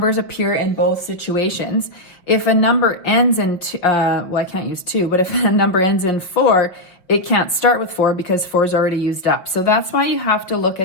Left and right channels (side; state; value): right; late; 5.4 ms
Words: appear in both situations, if a number ends in, well, I can't use 2, but if a number ends in 4, it can't start with 4 because 4 is already used up. So that's why you have to look